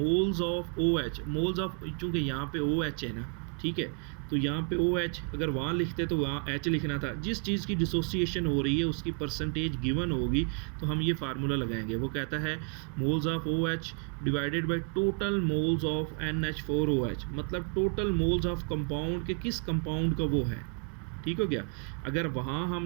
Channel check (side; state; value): left; quieter; 39.3 dB